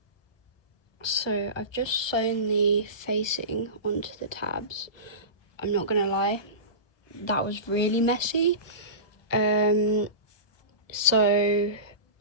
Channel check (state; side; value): late; right; 1.1 ms